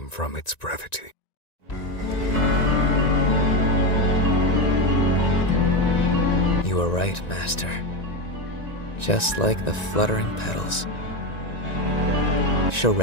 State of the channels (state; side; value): late; right; 1.9 ms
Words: from its brevity. You were right, Master. Just like the fluttering petals.